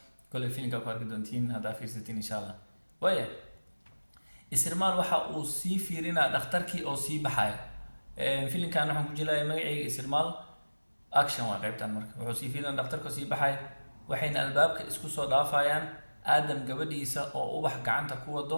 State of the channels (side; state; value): both; inverted; correlation -1.00